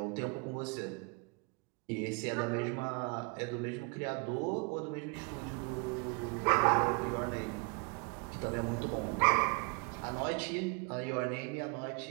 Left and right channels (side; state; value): left; quieter; 30.9 dB